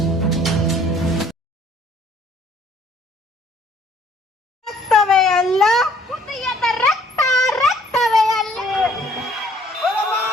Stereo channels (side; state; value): both; normal; correlation 0.59